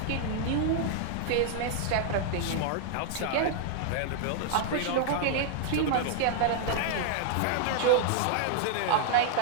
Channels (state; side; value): different; both; correlation -0.01